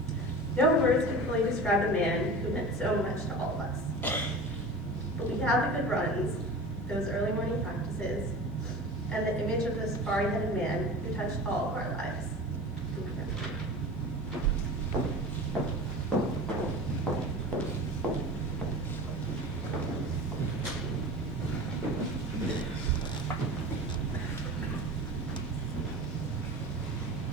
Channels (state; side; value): normal; both; correlation 0.34